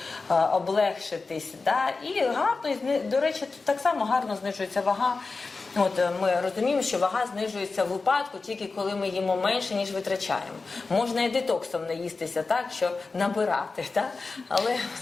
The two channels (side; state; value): right; quieter; 4.0 dB